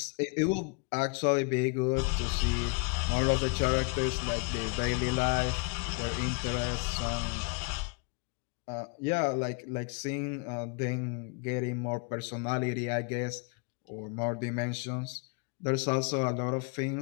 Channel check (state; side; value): quieter; right; 34.0 dB